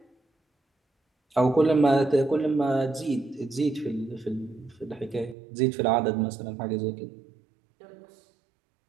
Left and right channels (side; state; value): left; drops out; at 5.4 s